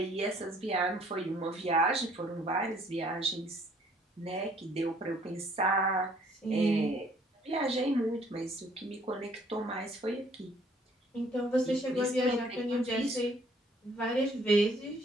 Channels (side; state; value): both; normal; correlation 0.61